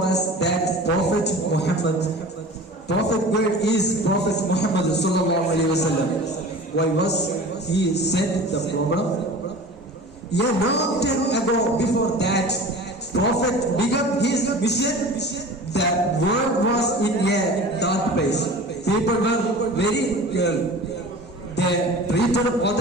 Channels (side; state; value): both; normal; correlation 0.38